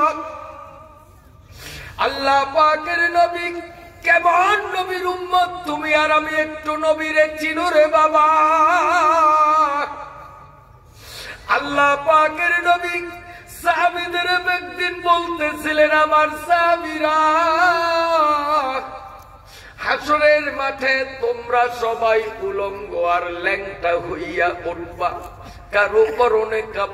আল্লাহ পাকের নবী কেমন নবীর উম্মত তুমি আর আমি একটু নবীরে চিনো রে বাবা। আল্লাহ পাকের নবী সাহাবীদের একদিন বলতেছিলেন আমার সাহাবীরা হাসরের মাঠে তোমরা সবাই উলঙ্গ আর ল্যাংটা হইয়া উঠবা, কারো পরনে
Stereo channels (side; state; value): both; identical; correlation 1.00